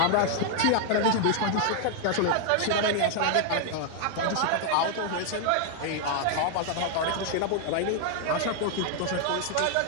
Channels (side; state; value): both; different; correlation 0.00